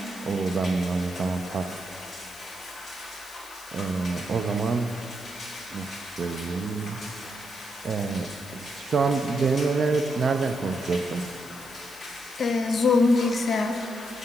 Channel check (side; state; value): left; noise; hiss, 19 dB below the sound